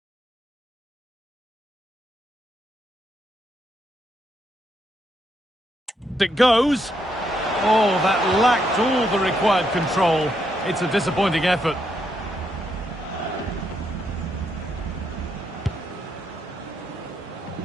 It goes. Oh, that lacked all the required control. It's a disappointing effort.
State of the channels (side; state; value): both; normal; correlation 0.78